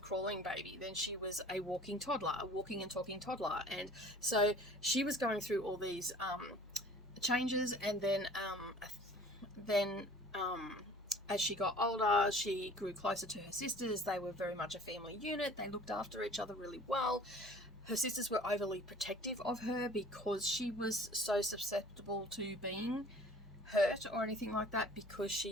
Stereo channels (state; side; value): normal; both; correlation 0.48